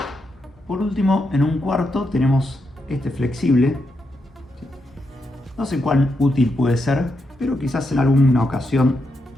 Por último, en un cuarto tenemos este flexible. No sé cuán útil puede ser, pero quizás en alguna ocasión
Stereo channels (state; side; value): normal; both; correlation 0.83